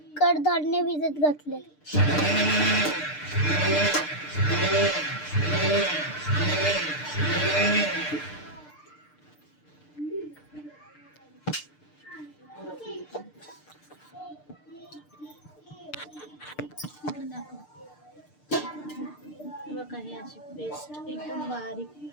कडधान्य भिजत घातले. बघा, ही अशी पेस्ट एकदम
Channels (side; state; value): right; late; 6.7 ms